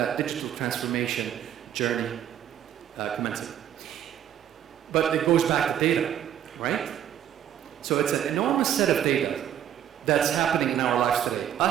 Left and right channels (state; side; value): quieter; left; 10.4 dB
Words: digital transformation journey commencing. But it goes back to data, right? So it's an enormous set of data that's happening in our lives today.